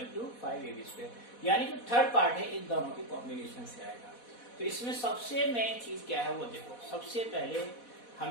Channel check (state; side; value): late; right; 4.1 ms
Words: to 5AB square. यानी जो third part है इन दोनों के combination से आएगा. तो इसमें सबसे मेन चीज क्या है वो देखो. सबसे पहले